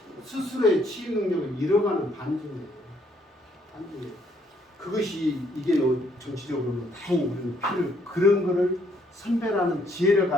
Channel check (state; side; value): normal; both; correlation 0.68